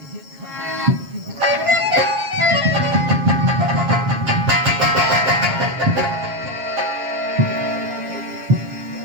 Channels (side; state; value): left; late; 7.3 ms